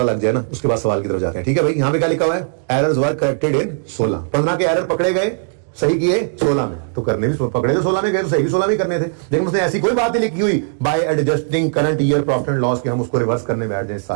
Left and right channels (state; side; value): silent; left; digital silence